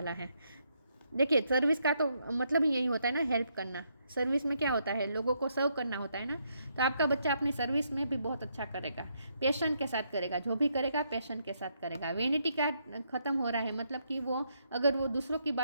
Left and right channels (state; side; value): inverted; both; correlation -0.76